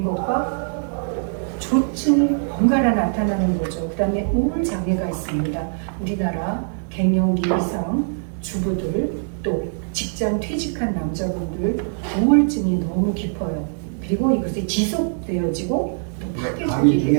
것과 조증이 번갈아 나타나는 거죠. 그 다음에 우울 장애가 있습니다. 우리나라 갱년기 이상 주부들 또 직장 퇴직한 남자분들 우울증이 너무 깊어요. 그리고 이것이 지속되어지고 또 강의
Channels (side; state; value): left; silent; 63 dB below the other